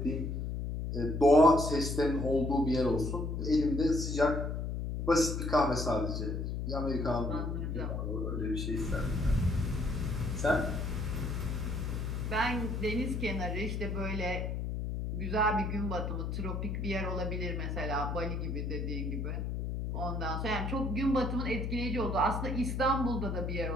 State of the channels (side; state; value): left; noise; hum, 2 dB below the sound